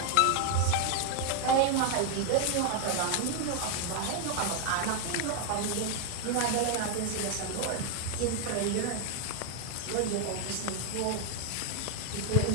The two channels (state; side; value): different; both; correlation 0.01